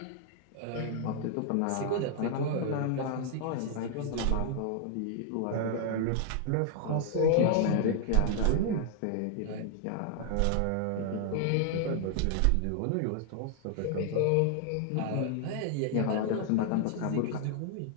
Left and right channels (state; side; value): different; both; correlation 0.00